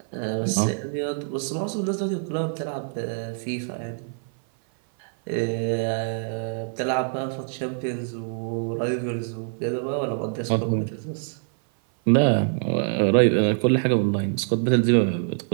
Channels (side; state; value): left; silent; 56 dB below the other